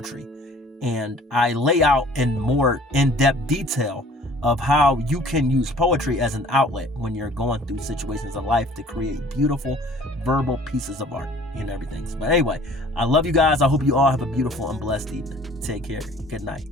And I lay out in more in-depth detail of how you can use poetry as an outlet when you're going through situations of life to create beautiful verbal pieces of art and everything. But anyway, I love you guys. I hope you all have a beautiful and blessed evening. Take care. Good night.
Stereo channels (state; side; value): normal; both; correlation 0.51